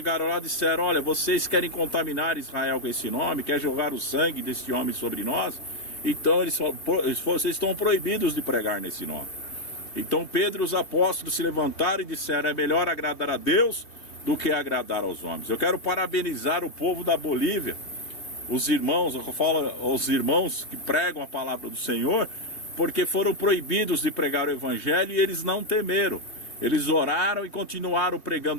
lá, disseram: olha, vocês querem contaminar Israel com esse nome, querem jogar o sangue desse homem sobre nós, então vocês estão proibidos de pregar nesse nome. Então Pedro e os apóstolos se levantaram e disseram: é melhor agradar a Deus do que agradar aos homens. Eu quero parabenizar o povo da Bolívia, os irmãos, eu falo aos irmãos que pregam a palavra do Senhor, porque foram proibidos de pregar o evangelho e eles não temeram. Eles oraram e continuaram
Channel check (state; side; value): late; right; 3.0 ms